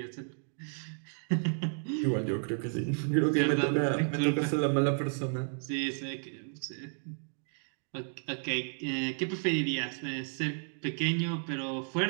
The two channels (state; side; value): silent; left; 56 dB below the other